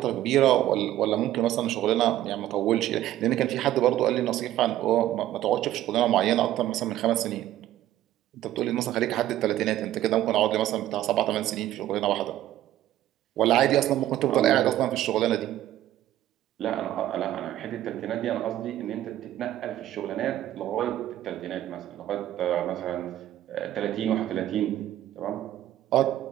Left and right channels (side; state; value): left; quieter; 13.3 dB